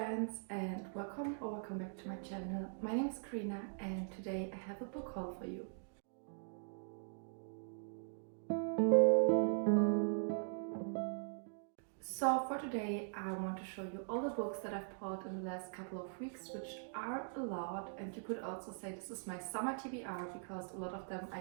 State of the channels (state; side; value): silent; left; digital silence